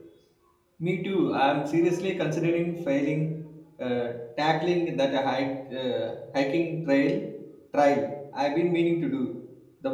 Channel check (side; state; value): both; identical; correlation 1.00